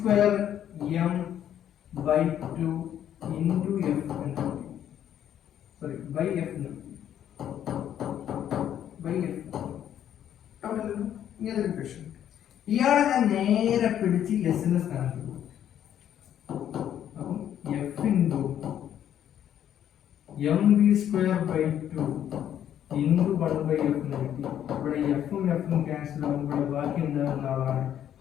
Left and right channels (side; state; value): right; quieter; 10.3 dB